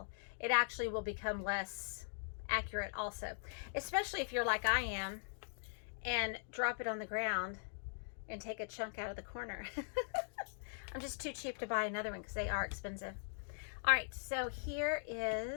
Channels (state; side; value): silent; right; digital silence